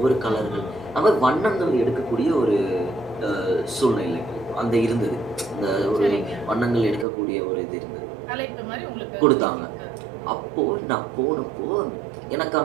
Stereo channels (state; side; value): drops out; left; at 7.1 s